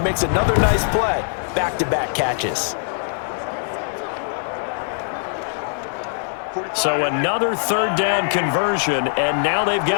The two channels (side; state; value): right; silent; 58 dB below the other